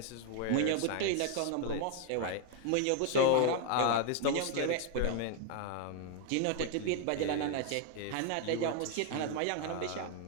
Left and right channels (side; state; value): both; different; correlation 0.00